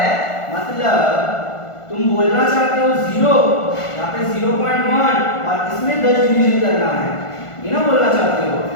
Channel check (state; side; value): late; right; 1.5 ms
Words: मतलब तुम बोलना चाहते हो 0, यहाँ पे 0.1 और इसमें 10 डिवीजन करना है, ये ना बोलना चाहते हो,